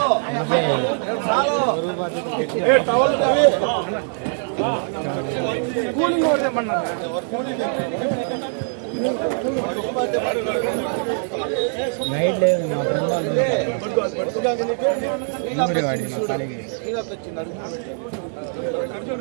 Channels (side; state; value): left; silent; 64 dB below the other